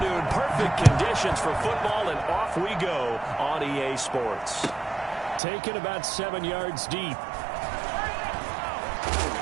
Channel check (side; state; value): left; drops out; at 5.4 s